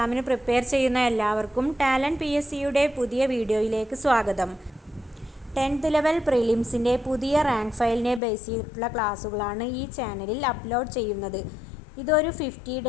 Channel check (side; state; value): right; drops out; at 8.2 s